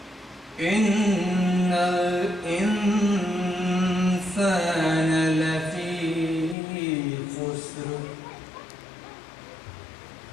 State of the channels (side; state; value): right; drops out; at 6.6 s